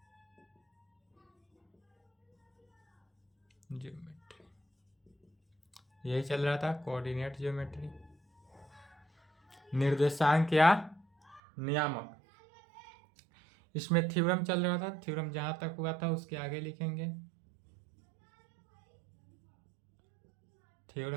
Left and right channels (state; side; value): drops out; left; at 11.4 s